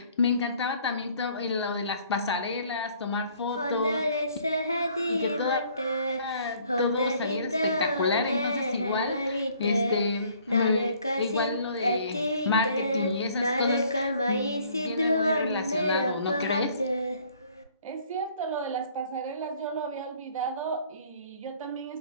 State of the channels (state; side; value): inverted; both; correlation -0.59